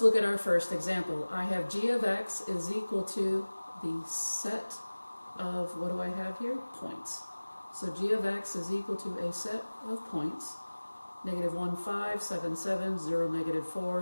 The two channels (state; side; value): inverted; both; correlation -1.00